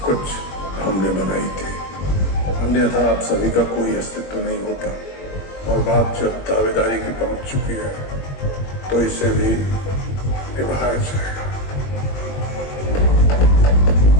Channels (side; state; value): right; late; 21 ms